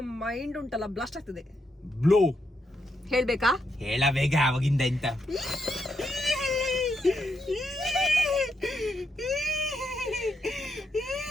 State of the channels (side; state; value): both; normal; correlation 0.81